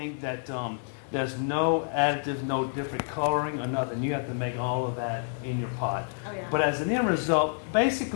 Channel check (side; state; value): right; silent; digital silence